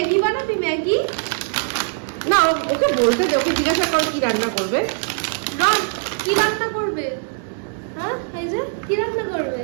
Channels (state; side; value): silent; left; digital silence